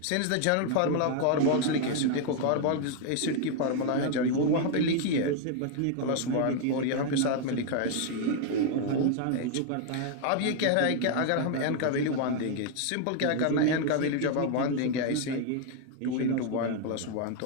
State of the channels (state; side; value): different; both; correlation 0.00